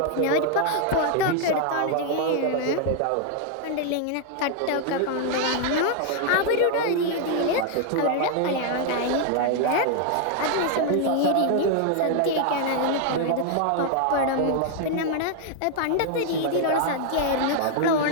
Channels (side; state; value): both; different; correlation 0.00